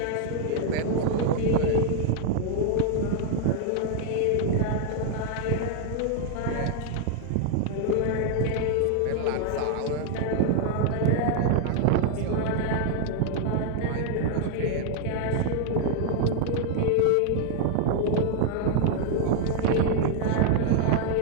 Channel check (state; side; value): different; both; correlation 0.00